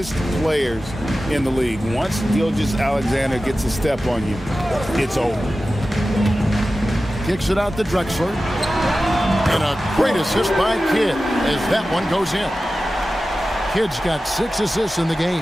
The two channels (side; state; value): both; normal; correlation 0.94